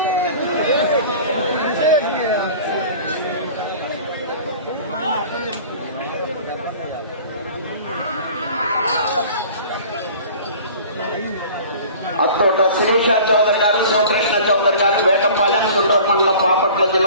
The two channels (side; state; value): both; inverted; correlation -0.44